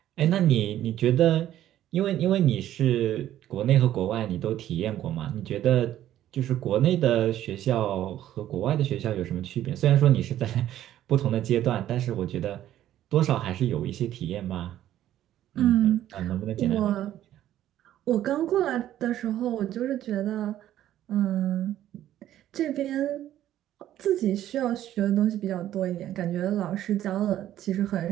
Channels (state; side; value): quieter; left; 12.4 dB